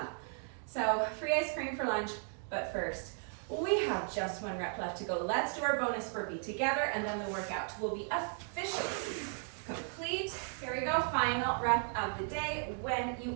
so free ice cream for lunch, but first, we have just 1 rep left to go. Let's do our bonus burpee together, and then the workout will be officially complete. Here we go, final rep of the day when you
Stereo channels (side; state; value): left; silent; 54 dB below the other